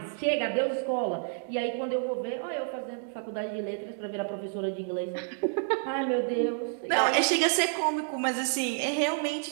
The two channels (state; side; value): silent; left; 58 dB below the other